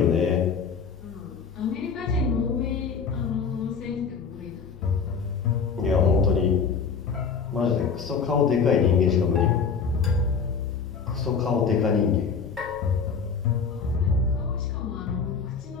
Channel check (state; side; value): quieter; right; 5.8 dB